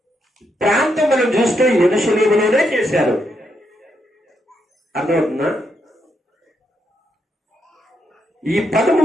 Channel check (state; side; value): normal; both; correlation 0.79